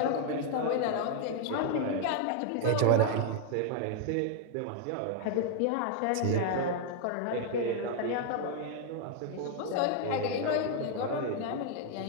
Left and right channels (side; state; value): both; different; correlation 0.00